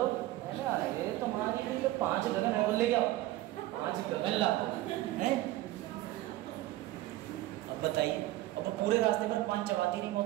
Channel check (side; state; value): left; quieter; 16.2 dB